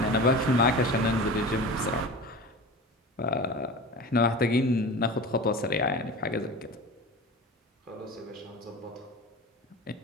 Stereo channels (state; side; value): normal; both; correlation 0.33